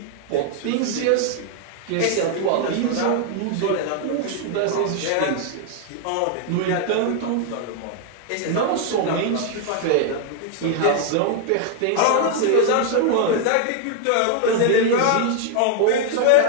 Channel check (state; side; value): different; both; correlation 0.00